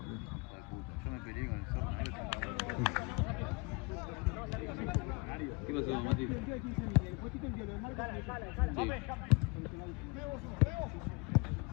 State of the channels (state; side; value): quieter; right; 29.1 dB